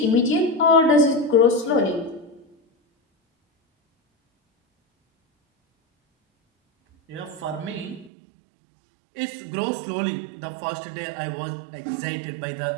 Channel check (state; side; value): drops out; left; at 8.1 s